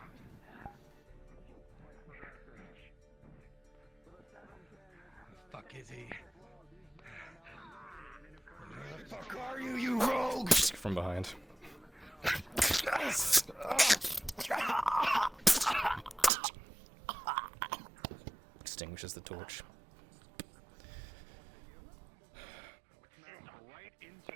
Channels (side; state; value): left; drops out; at 16.3 s